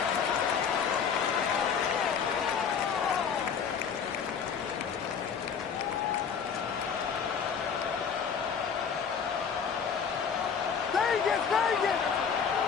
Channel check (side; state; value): right; quieter; 6.7 dB